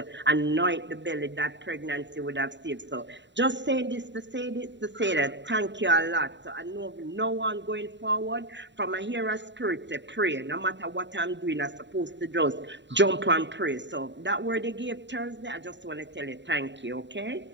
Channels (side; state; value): left; late; 0.52 ms